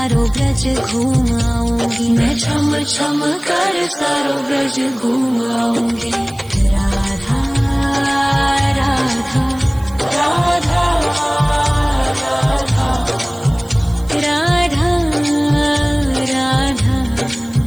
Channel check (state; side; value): noise; right; hiss, 24 dB below the sound